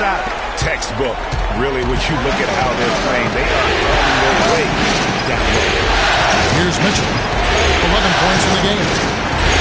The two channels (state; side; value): identical; both; correlation 1.00